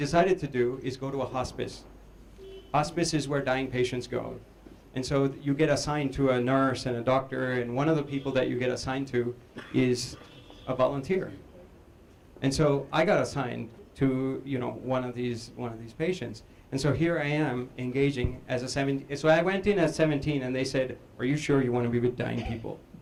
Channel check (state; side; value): identical; both; correlation 1.00